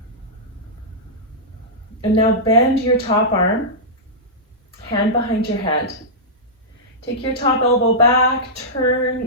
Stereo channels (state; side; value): normal; both; correlation -0.13